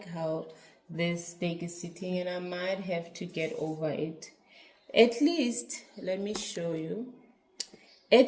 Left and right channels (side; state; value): both; identical; correlation 1.00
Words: how this stake is sitting, and I might have to get over it. At least, let me show you.